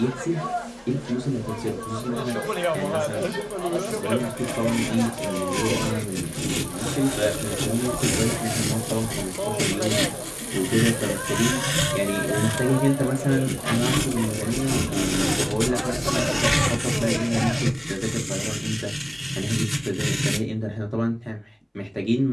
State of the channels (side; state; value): both; identical; correlation 1.00